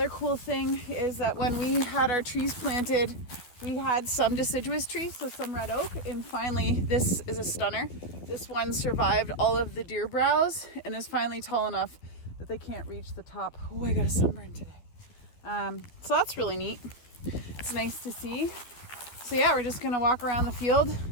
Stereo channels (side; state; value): right; late; 12 ms